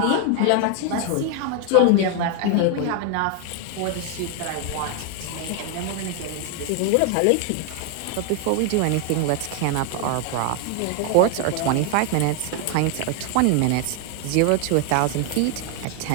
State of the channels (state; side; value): different; both; correlation 0.01